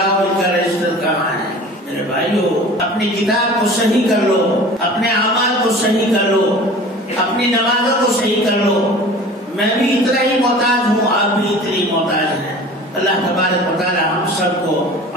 ان کا رجسٹر کہاں ہے۔ میرے بھائیو، اپنی کتاب کو صحیح کر لو، اپنے اعمال کو صحیح کر لو، اپنی نمازوں کو صحیح کر لو۔ میں بھی اتنا ہی محتاج ہوں، آپ بھی اتنی محتاج ہیں۔ اللہ تبارک و تعالی ہم سب کو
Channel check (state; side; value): normal; both; correlation 0.41